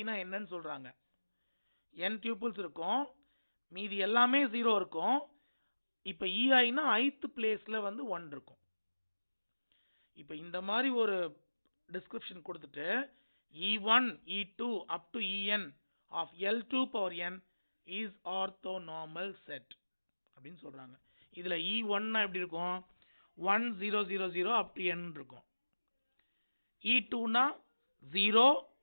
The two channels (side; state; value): both; inverted; correlation -1.00